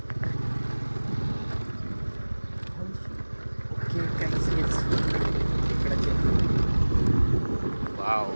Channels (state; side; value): inverted; both; correlation -1.00